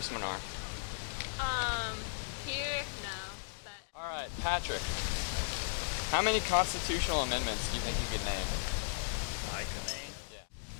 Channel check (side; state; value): right; silent; digital silence